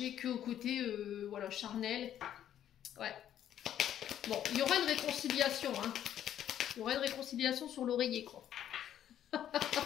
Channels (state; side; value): quieter; right; 10.7 dB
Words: qu'au côté voilà, charnel. Ouais. Bon, il y aura une réconciliation. Hein. Il y aura une réconciliation sur l'oreiller, quoi.